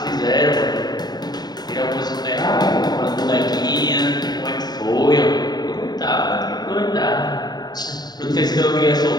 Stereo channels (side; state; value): right; late; 0.20 ms